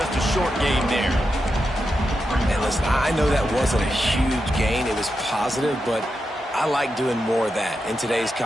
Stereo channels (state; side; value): normal; both; correlation 0.88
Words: a short gain there. And listen, I know that wasn't a huge gain. It was positive, but I like doing more of that in today's